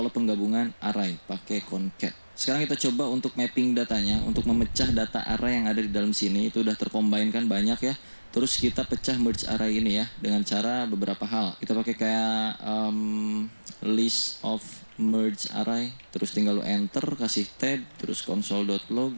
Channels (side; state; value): both; inverted; correlation -1.00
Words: penggabungan array pakai concat. Sekarang kita coba untuk mapping datanya, untuk memecah data array yang ada di dalam sini. Itu udah tercombine kan banyak ya. Terus kita pecah merge array ini ya dengan cara beberapa hal. Kita pakai kayak list of merge array, terus tinggal lu enter, kasih tab, terus